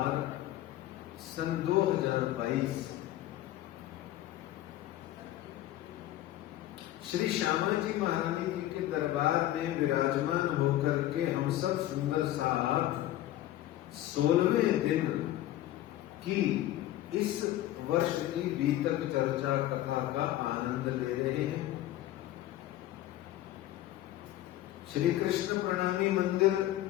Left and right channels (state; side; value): quieter; right; 14.2 dB